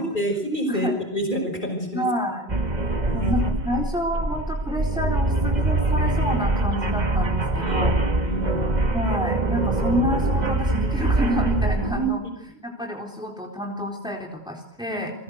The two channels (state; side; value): normal; both; correlation 0.39